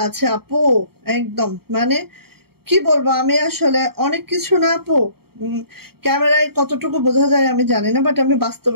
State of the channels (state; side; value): late; left; 0.95 ms